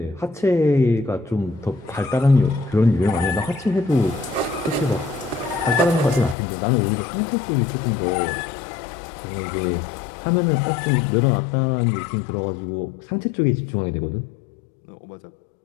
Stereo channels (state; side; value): drops out; right; at 6.4 s